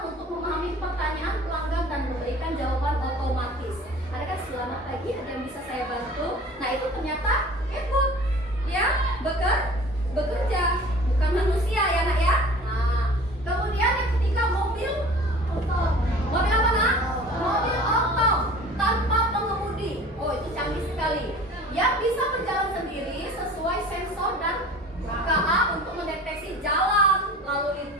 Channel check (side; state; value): both; normal; correlation 0.44